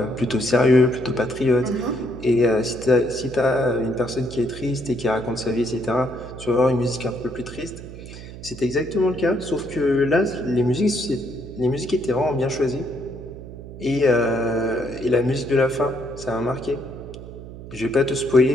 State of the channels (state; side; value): noise; right; hum, 13 dB below the sound